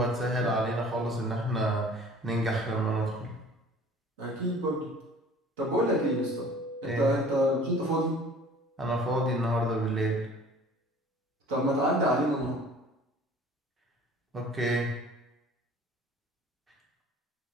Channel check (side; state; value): both; normal; correlation 0.48